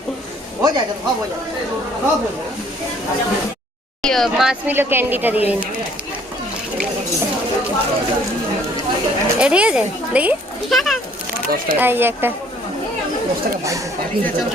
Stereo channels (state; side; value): normal; both; correlation 0.59